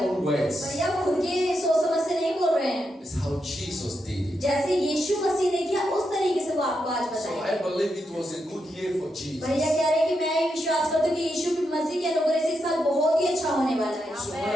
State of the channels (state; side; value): normal; both; correlation 0.84